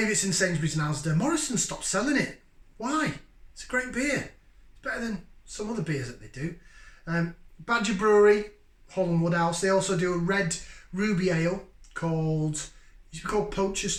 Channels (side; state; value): both; identical; correlation 1.00